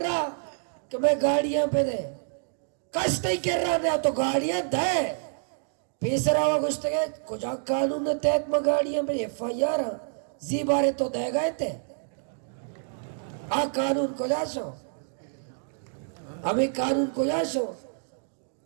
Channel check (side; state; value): left; silent; digital silence